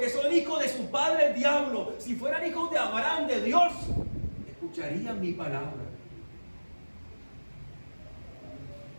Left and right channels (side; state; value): both; inverted; correlation -1.00